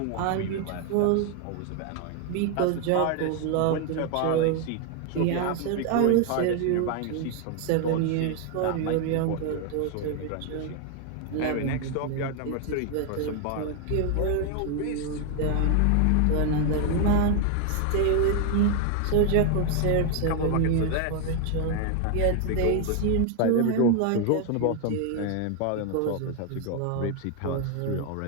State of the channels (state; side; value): different; both; correlation 0.01